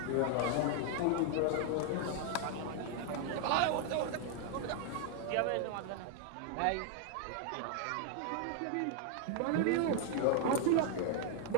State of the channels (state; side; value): different; both; correlation 0.00